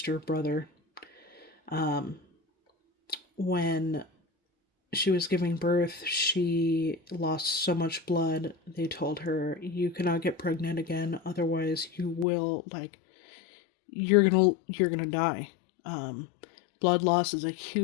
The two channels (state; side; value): drops out; right; at 12.2 s